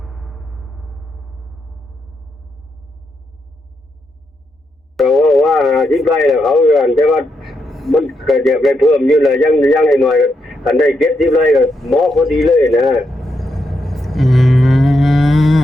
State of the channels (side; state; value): both; normal; correlation 0.82